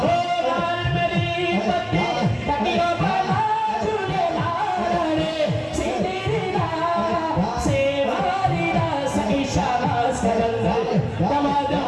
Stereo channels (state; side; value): identical; both; correlation 1.00